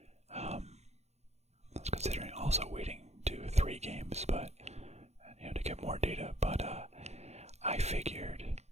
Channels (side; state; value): left; late; 0.32 ms